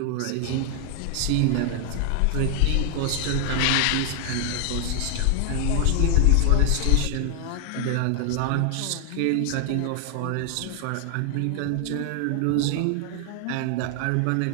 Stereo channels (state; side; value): different; both; correlation 0.00